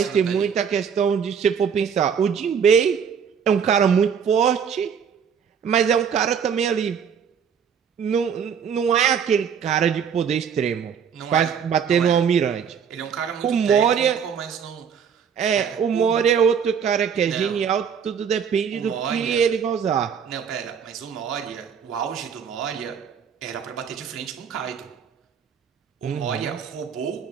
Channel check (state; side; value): quieter; left; 7.3 dB